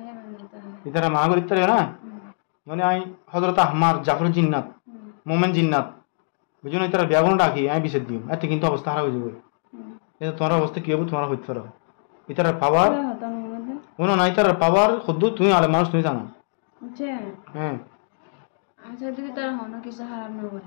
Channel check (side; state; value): right; silent; digital silence